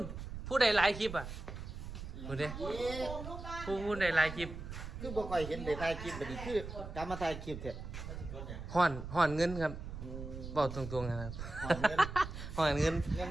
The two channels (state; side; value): noise; right; rumble, 9 dB below the sound